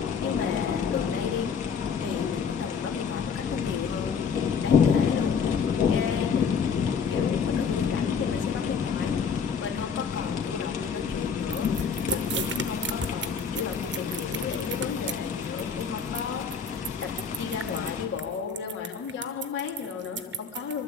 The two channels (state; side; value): quieter; right; 6.1 dB